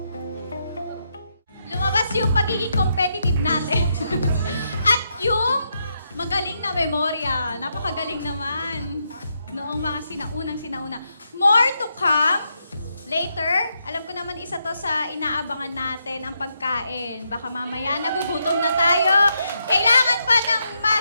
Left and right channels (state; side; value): inverted; both; correlation -0.80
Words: Lumabas yung pagiging competitive natin. At yung magaling na memorya. Napakagaling naman. Noong mga sinauna. More to come later. Alam ko naman isa to sa inaabangan natin, ang pagkain. Baka mamaya nagugutom na tayo. Kailangan pa ng